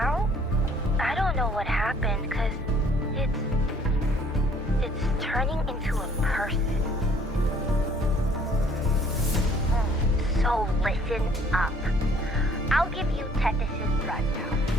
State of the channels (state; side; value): normal; both; correlation 0.59